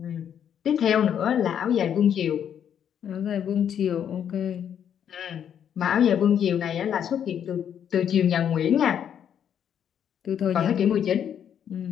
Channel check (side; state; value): right; quieter; 8.9 dB